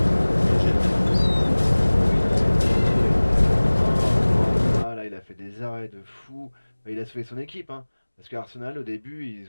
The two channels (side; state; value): both; inverted; correlation -1.00